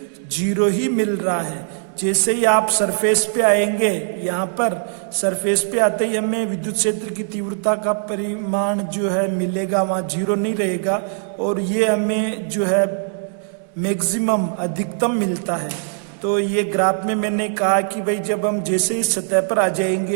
0 ही मिल रहा है। जैसे ही आप सरफेस पे आएंगे, यहाँ पर सरफेस पे आते ही हमें विद्युत क्षेत्र की तीव्रता का परिमाण जो है मिलेगा, वहाँ 0 नहीं रहेगा और ये हमें जो है मैक्सिमम अधिकतम मिलता है। तो ये ग्राफ में मैंने कहा कि भाई जब हम जैसे ही सतह पर आ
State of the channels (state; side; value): silent; left; digital silence